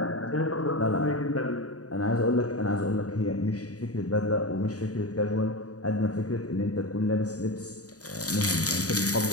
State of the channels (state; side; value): late; right; 0.67 ms